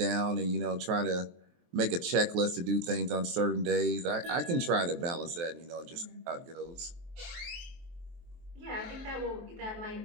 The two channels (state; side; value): late; left; 23 ms